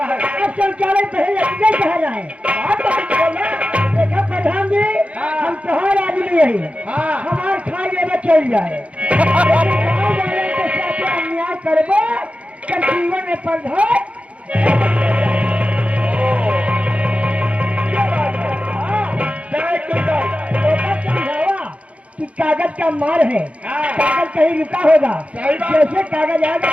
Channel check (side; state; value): left; late; 0.063 ms